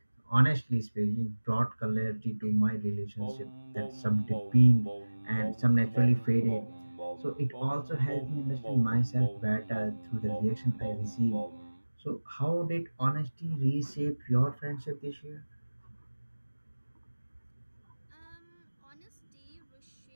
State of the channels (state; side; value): inverted; both; correlation -1.00